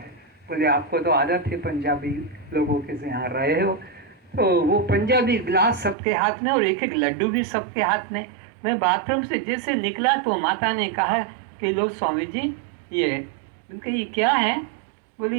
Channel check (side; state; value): left; drops out; at 6.0 s